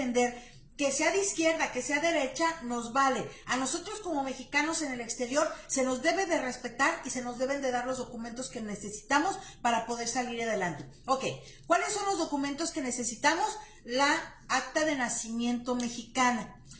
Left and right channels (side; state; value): both; identical; correlation 1.00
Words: Que sea de izquierda, que sea derecha, nos vale. A nosotros como mexicanos en el exterior se nos debe de respetar y se nos deben de dar los documentos que necesitamos para poder salir adelante. Ok, ¿cuáles son los documentos que necesitamos? La acta de nacimiento mexicana.